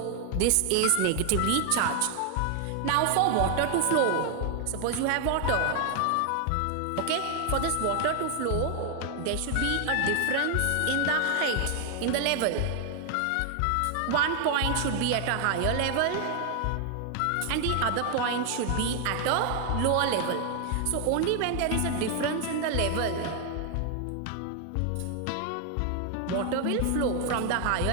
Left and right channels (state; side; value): different; both; correlation 0.00